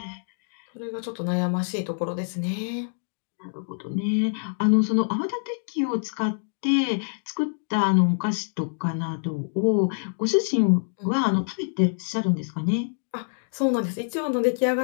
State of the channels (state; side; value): silent; right; digital silence